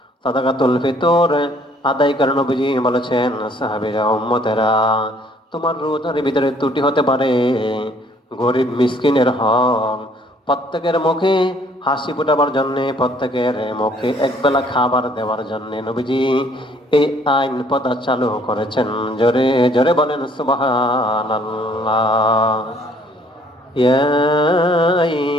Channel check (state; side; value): normal; both; correlation 0.61